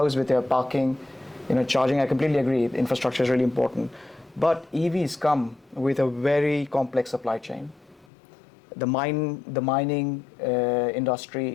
with your parking, charging, I completely agree. Infrastructure is really important, but EVs come with a very complex supply chain. The mining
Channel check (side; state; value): right; drops out; at 8.1 s